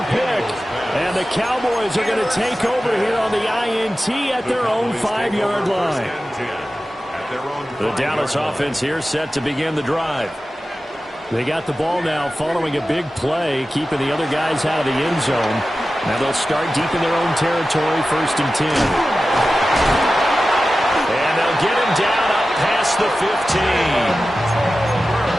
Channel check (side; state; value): both; normal; correlation 0.94